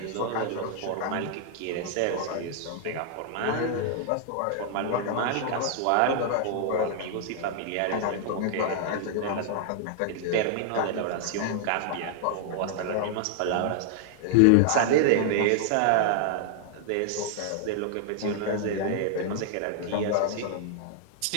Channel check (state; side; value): different; both; correlation 0.00